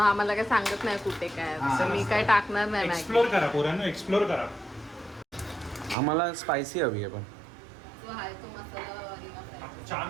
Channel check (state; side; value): drops out; left; at 6.0 s